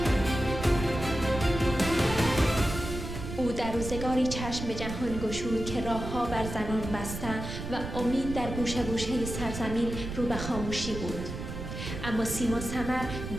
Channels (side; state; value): right; noise; rumble, 7 dB below the sound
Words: در روزگاری چشم به جهان گشود که راه‌ها بر زنان بسته و امید در گوشه گوشه سرزمین رو به خاموشی بود. اما سیما سمر